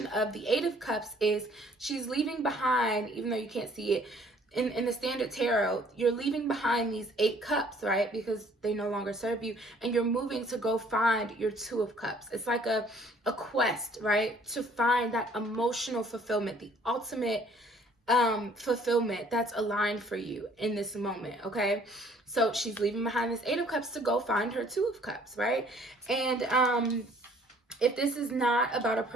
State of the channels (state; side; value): normal; both; correlation 0.58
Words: of the 8 of Cups is she's leaving behind, even though you can't see it, in the standard tarot, you're leaving behind these 8 cups, right? Because they no longer serve you, and you're moving to go find your 2 of Cups. It's like a quest, right? To find that emotional fulfillment, the ultimate fulfillment that's aligned for you in this moment, okay? So she's leaving behind this 8 of Cups to go find her 2 of Cups, right? And if this is not about a